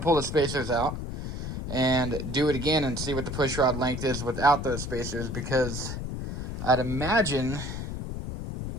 pull the spacers out and do it again and see what the push rod length is without those spacers, because I'd imagine,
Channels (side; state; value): left; noise; rumble, 5 dB below the sound